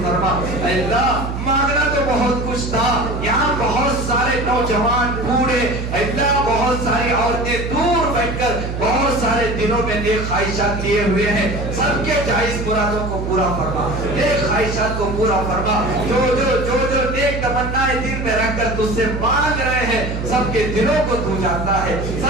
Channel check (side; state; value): right; noise; hum, 4 dB below the sound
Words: فرما۔ اللہ مانگنا تو بہت کچھ تھا، یہاں بہت سارے نوجوان بوڑھے، اللہ بہت ساری عورتیں دور بیٹھ کر بہت سارے دنوں میں نیک خواہشات لیے ہوئے ہیں، سب کے جائز مرادوں کو پورا فرما، نیک خواہشات کو پورا فرما۔ جو نیک تمنائیں دل میں رکھ کر تجھ سے مانگ رہے ہیں سب کے دلوں کو تو جانتا ہے،